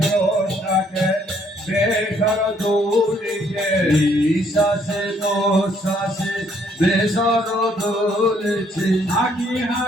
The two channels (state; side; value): normal; both; correlation 0.66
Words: বেসর দৌড়িকে শ্বাসে প্রশ্বাসে বেসর দৌড়েছে হাঁকি